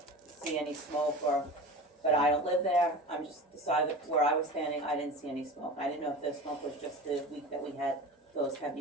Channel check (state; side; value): normal; both; correlation 0.32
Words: see any smoke but I don't live there, I'm just the side of where I was standing, I didn't see any smoke. I didn't know if the smoke was just the week that we had those